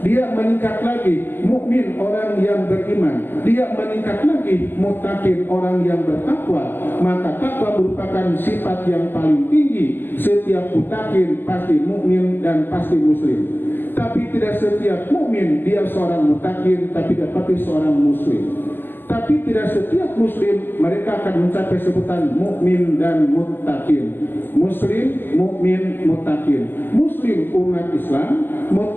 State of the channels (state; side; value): late; right; 0.095 ms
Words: Dia meningkat lagi mukmin, orang yang beriman. Dia meningkat lagi muttaqin, orang yang bertakwa. Maka takwa merupakan sifat yang paling tinggi. Setiap muttaqin pasti mukmin dan pasti muslim. Tapi tidak setiap mukmin dia seorang muttaqin, tapi dapat seorang muslim. Tapi tidak setiap muslim mereka akan mencapai sebutan mukmin dan muttaqin. Muslim, mukmin, muttaqin. Muslim umat Islam,